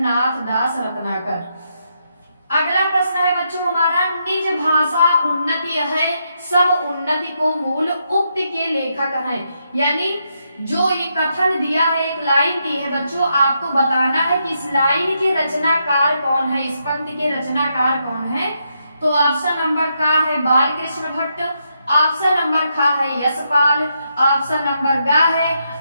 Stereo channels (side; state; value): both; inverted; correlation -0.80